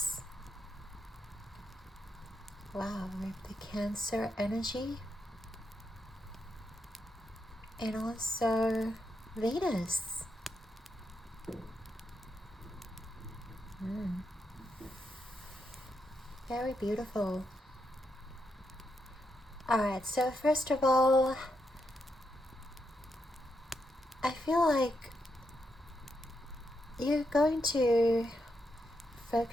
Wow, with the Cancer energy. And also Venus. Very beautiful. Alright, so first of all, I feel like you're going to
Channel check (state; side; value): normal; both; correlation 0.82